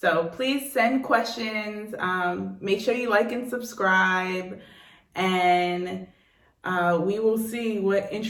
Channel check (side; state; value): both; identical; correlation 1.00